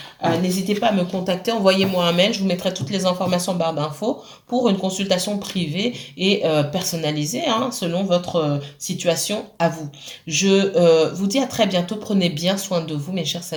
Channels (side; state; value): both; identical; correlation 1.00